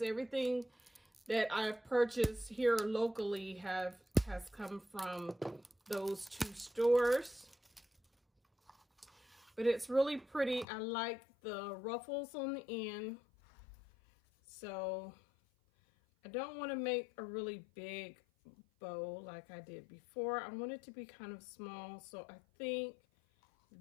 Everything that I've purchased here locally has come from those 2 stores. But it's really pretty. I like the ruffles on the end. So I don't want to make a really big bow like I did before. I want it to be kind of small, so I think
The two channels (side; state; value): right; drops out; at 10.7 s